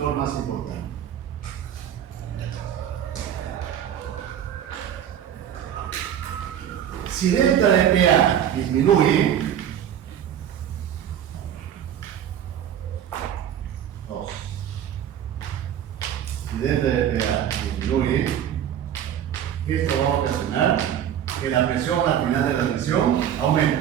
más importante. Si delta de PA disminuye, si delta de PA disminuye, esto va a ocasionar que la presión al final de la admisión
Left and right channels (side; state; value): left; quieter; 9.8 dB